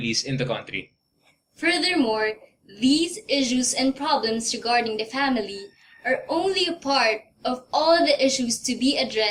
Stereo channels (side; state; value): both; identical; correlation 1.00